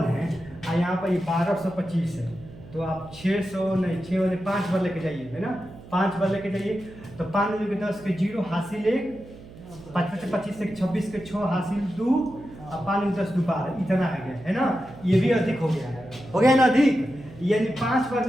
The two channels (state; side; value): noise; right; hum, 18 dB below the sound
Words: है, और यहाँ पर ये 1225 है, तो आप 600 नहीं 6 वाले 5 बार लेके जाइए, है ना, 5 बार लेके जाइए। तो 5 में 10 के 0 हासिल 1, 5 से 25 से 26 के 6 हासिल 2, अब 5 में 10 दोबारा, इतना आ गया, है ना, ये भी अधिक हो गया ना अधिक, यानी 5 बार